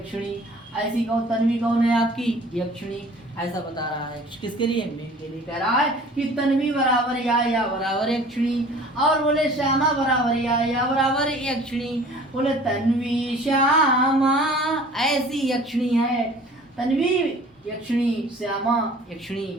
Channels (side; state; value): both; normal; correlation 0.48